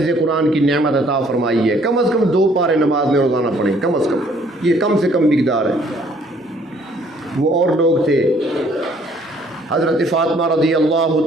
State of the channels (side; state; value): both; normal; correlation 0.61